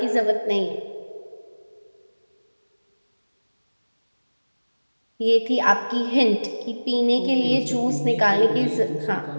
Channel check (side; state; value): both; inverted; correlation -1.00